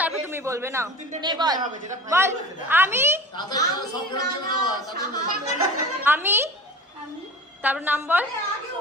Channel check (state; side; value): normal; both; correlation 0.36